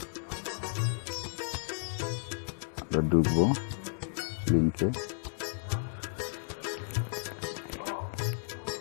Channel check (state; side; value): silent; right; digital silence